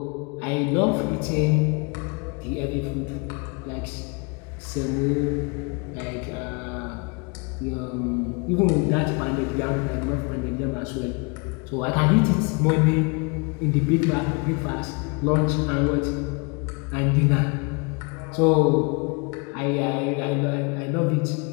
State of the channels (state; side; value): quieter; right; 32.6 dB